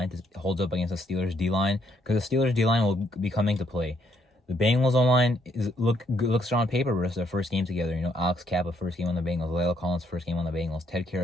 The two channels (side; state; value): both; normal; correlation 0.71